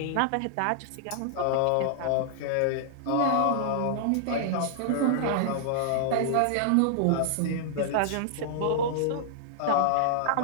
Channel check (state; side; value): different; both; correlation -0.01